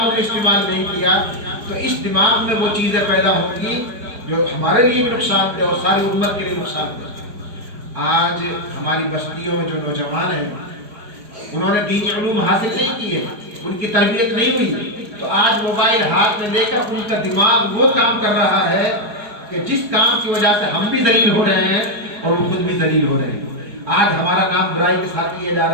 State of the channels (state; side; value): late; left; 4.8 ms